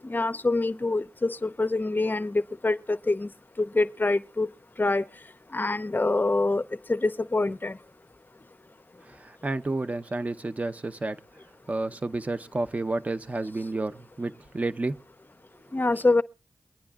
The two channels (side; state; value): both; normal; correlation 0.92